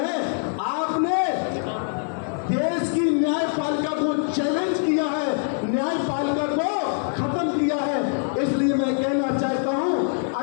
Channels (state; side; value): silent; right; digital silence